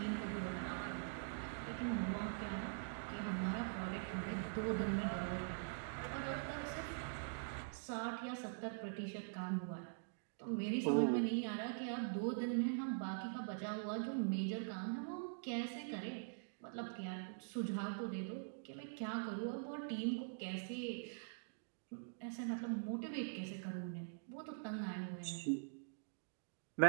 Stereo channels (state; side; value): silent; left; digital silence